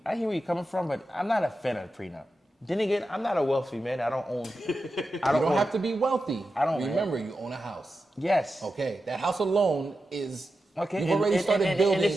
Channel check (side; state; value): both; normal; correlation 0.91